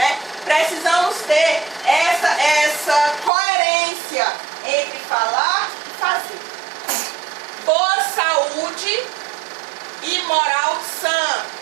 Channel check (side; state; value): left; drops out; at 3.3 s